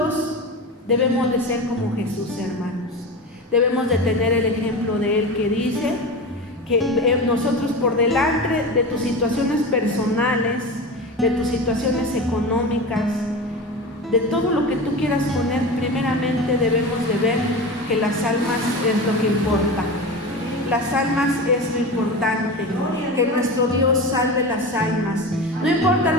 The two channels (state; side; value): normal; both; correlation 0.27